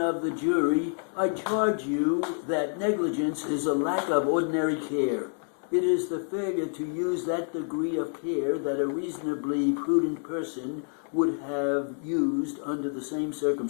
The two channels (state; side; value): silent; right; 56 dB below the other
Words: the jury, I charge you that negligence is a lack of ordinary care. It is the failure to use that degree of care that a reasonably prudent person would have used under the same